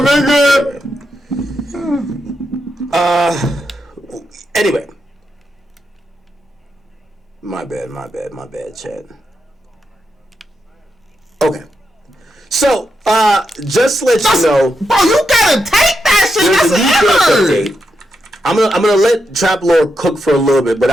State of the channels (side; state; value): both; normal; correlation 0.84